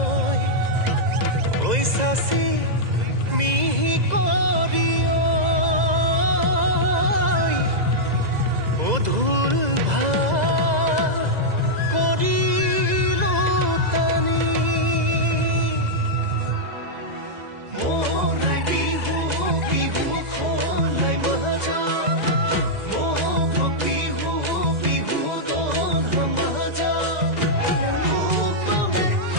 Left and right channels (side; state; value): left; late; 2.0 ms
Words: ঐ চাচি মিহি কৰি ধুল ভাল কৰিলো টানি মৰাই বিহু বিহু খলাই মাজা বিহু বিহু দন মাজা লোকমে